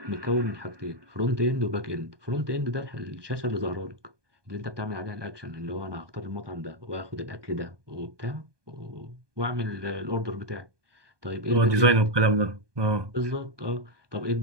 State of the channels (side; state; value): left; late; 1.2 ms